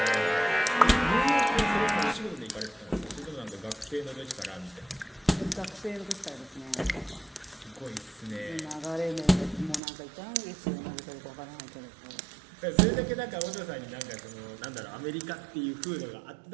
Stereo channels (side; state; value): left; drops out; at 9.8 s